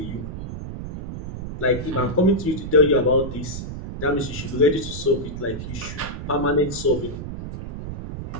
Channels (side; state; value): right; noise; rumble, 8 dB below the sound